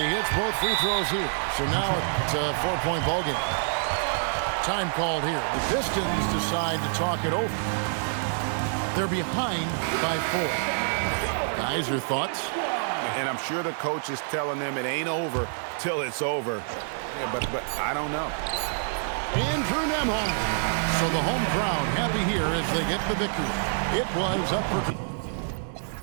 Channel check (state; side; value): silent; left; digital silence